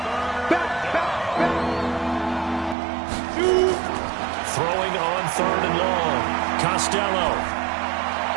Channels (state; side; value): drops out; left; at 2.8 s